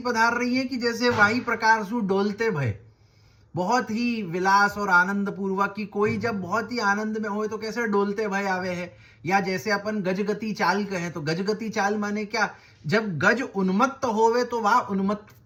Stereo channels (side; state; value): both; identical; correlation 1.00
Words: पधार रही है कि जैसे वही प्रकार सु डोलते भय, बहुत ही विलास और आनंद पूर्वक की कोई जब बहुत ही आनंद में होए तो कैसे डोलते भय आवे है। या जैसे अपन गजगति चाल कहें तो गजगति चाल माने क्या, जब गज उन्मत्त होवे तो वह